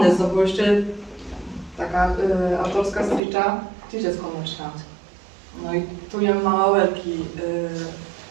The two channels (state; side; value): drops out; left; at 3.2 s